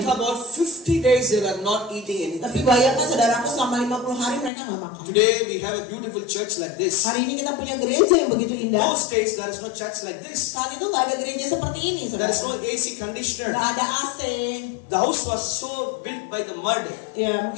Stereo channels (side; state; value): right; drops out; at 4.5 s